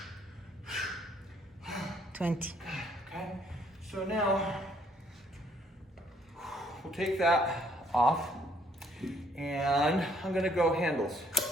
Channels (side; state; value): both; normal; correlation 0.65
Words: 20. Okay, so now we'll take that off and I'm gonna go handles.